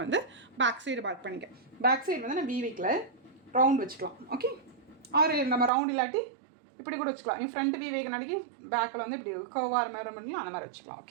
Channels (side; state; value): left; drops out; at 5.7 s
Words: வந்து பேக் சைடு பண்ணிக்க. பேக் சைடு வந்து நான் வி வைக்கல, ரவுண்ட் வச்சுக்கலாம். ஓகே, ஆறு நம்ம ரவுண்ட் இல்லாட்டி இப்படி கூட வச்சுக்கலாம். நீ ஃப்ரண்ட் வி வைக்கனாடிக்கு பேக்கில் வந்து இப்படி கர்வாக மாதிரி பண்ணி அந்த மாதிரி வச்சுக்கலாம்.